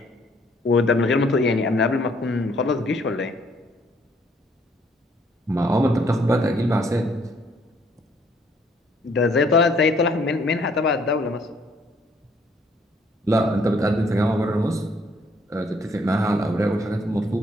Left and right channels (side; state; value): both; normal; correlation 0.65